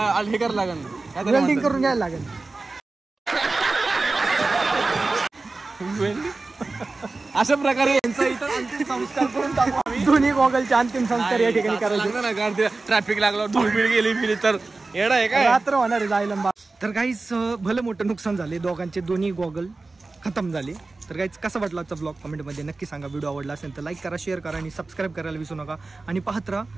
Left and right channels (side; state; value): left; quieter; 3.5 dB